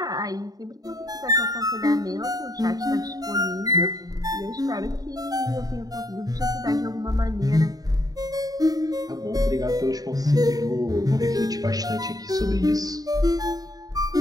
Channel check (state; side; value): late; left; 0.18 ms